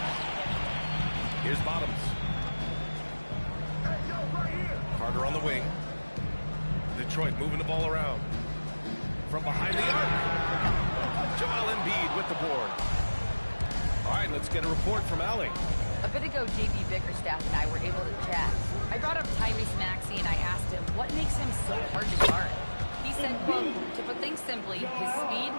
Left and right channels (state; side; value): inverted; both; correlation -1.00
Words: Here's Bottoms. Carter on the wing. Detroit moving the ball around. From behind the arc. Joel Embiid with the board. All right, let's get a report from Allie. A bit ago, J.B. Bickerstaff and I were able to chat. I brought up Tyrese Maxey and I asked him what makes him so hard to guard. He said, quote, to put things simply, his speed